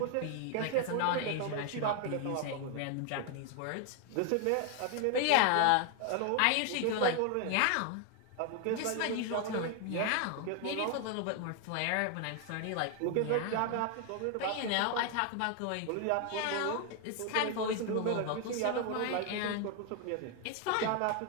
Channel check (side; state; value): both; different; correlation 0.00